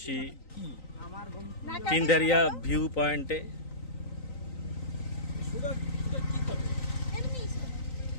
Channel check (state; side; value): late; right; 3.9 ms